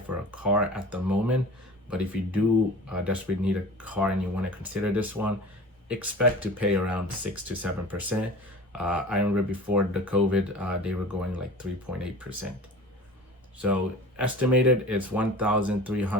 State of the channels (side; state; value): both; normal; correlation 0.39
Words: a car at the moment. But if you do desperately need a car and you want to consider this one, expect to pay around 6 to 7%. I remember before the COVID, they were going like 3.8%. So estimated it's